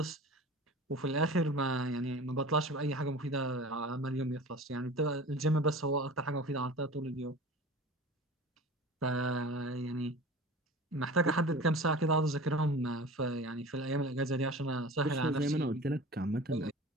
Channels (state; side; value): normal; both; correlation 0.38